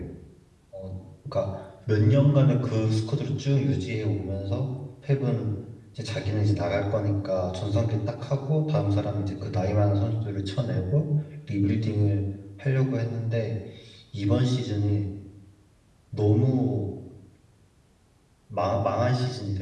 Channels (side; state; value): both; identical; correlation 1.00